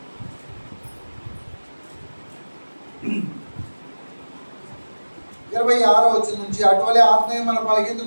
26వ వచనం నుంచి, అటువలే ఆత్మీయ మన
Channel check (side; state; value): both; inverted; correlation -1.00